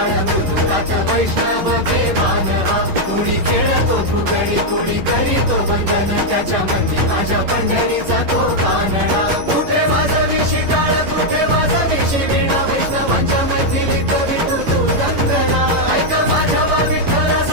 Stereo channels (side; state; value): left; late; 11 ms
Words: मृदुकात वैष्णव देवान हा. कुणी खेळतो फुगडी कुणी करीतो वंदन, त्याच्या मध्ये माझ्या पंढरीचा तो कानडा. कुठे वाजवी शिटाळ कुठे वाजवी शिवीणा, वैष्णवांच्या मैत्रिणीत विठू तू गंगणा. ऐक माझ्या विठ्ठला